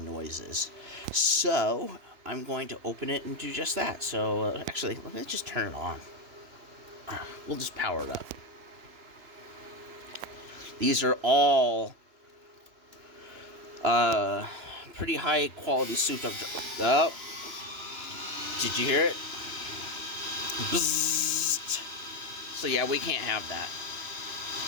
noises. So I'm going to open it and do just that. So actually, let me just turn it on. We'll just power it up. These are all pretty high quality souped up. Oh, did you hear it? Bzzzt. So yeah, we can't have that.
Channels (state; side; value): late; left; 2.9 ms